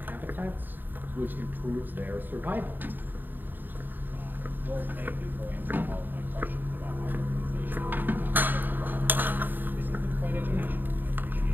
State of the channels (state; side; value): late; left; 0.091 ms